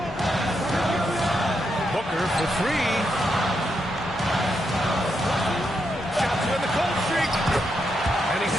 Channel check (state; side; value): normal; both; correlation 0.82